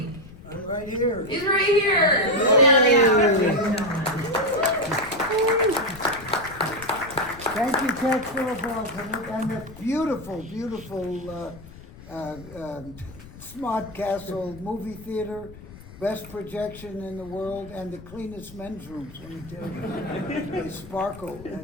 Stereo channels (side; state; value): left; noise; rumble, 17 dB below the sound